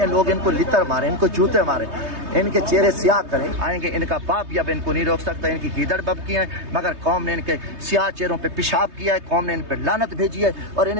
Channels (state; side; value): late; left; 3.2 ms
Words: لوگ ان کو لتر مارے، ان کو جوتے مارے، ان کے چہرے سیاہ کریں. آئیں گے ان کا باپ بھی اب ان کو نہیں روک سکتا، ان کی گیدڑ بب کی ہیں، مگر قوم نے ان کے سیاہ چہروں پہ پیشاب کیا ہے، قوم نے ان پہ لعنت بھیجی ہے، اور